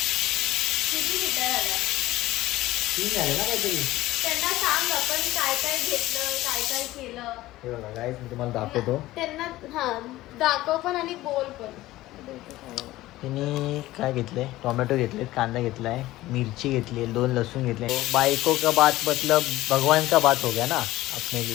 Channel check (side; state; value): right; quieter; 16.8 dB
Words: तीन झाले ना काहीतरी. त्यांना सांग आपण काय काय घेतलं, काय काय केलं. हे बघा गाईस मी तुम्हाला दाखवतो. त्यांना दाखव पण आणि बोल पण. तिने काय घेतलंय, टोमॅटो घेतले, कांदा घेतलाय, मिरची घेतली, 2 लहसुन घेतले. बाइको का बात मतलब भगवान का बात हो गया ना अपने